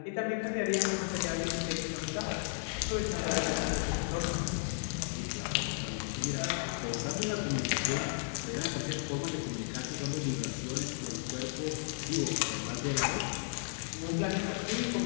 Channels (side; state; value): right; silent; digital silence